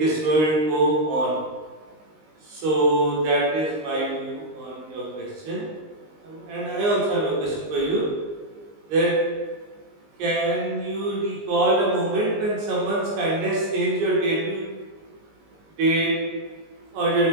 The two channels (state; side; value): late; left; 19 ms